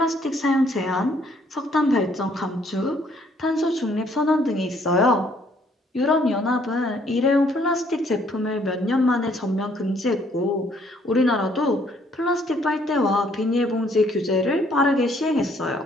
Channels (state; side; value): normal; both; correlation 0.65